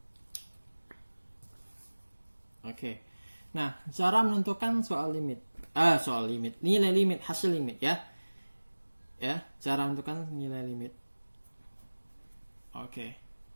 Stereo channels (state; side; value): inverted; both; correlation -1.00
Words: Oke. Nah, cara menentukan nilai limit, hasil limit ya. Ya, cara menentukan nilai limit. Oke.